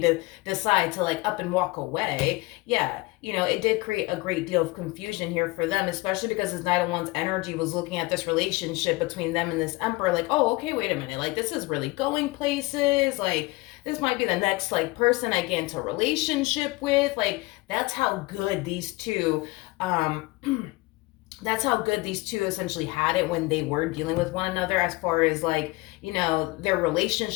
to decide to like up and walk away, yeah, it did create a great deal of confusion here for them, especially because this Knight of Wands energy was looking at this relationship between them and this Emperor like, oh, okay, wait a minute, like this is really going places, like this might be the next like person I get into a relationship with. Like, that's how good these two essentially had it when they were dealing with one another, as far as like, their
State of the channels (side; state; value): right; quieter; 22.4 dB